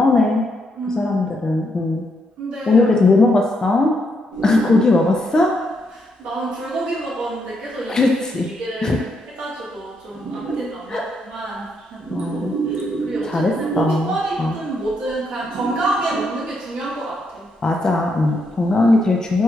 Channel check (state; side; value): normal; both; correlation 0.78